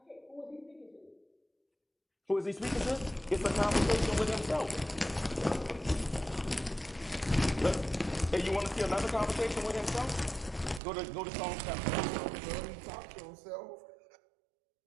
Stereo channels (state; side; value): drops out; left; at 10.8 s